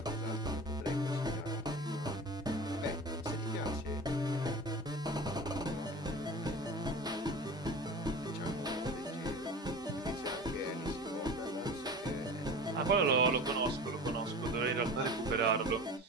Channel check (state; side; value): normal; both; correlation 0.34